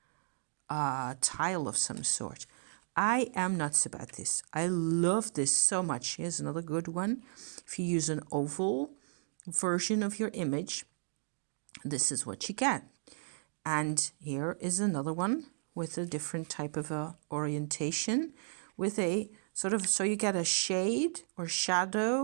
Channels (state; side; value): silent; left; digital silence